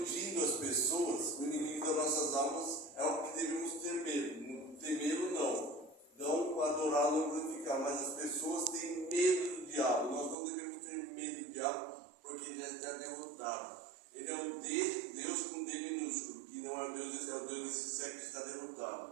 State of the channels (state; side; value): drops out; left; at 10.4 s